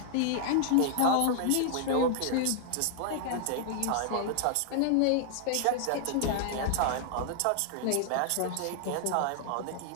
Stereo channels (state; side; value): different; both; correlation -0.01